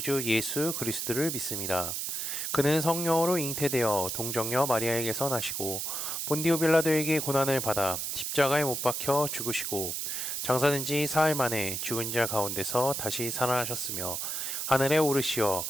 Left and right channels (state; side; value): noise; right; hiss, 3 dB below the sound